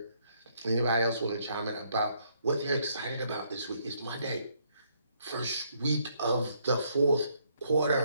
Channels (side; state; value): both; inverted; correlation -0.70